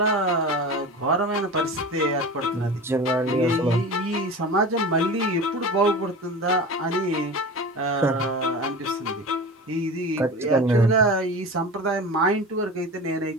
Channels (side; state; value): both; normal; correlation 0.32